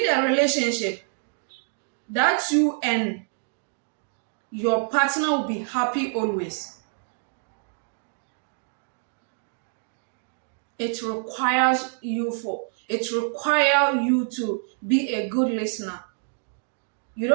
a relationship that you and your partner will be happy always, it requires you to be a good listener. You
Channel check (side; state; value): left; silent; 61 dB below the other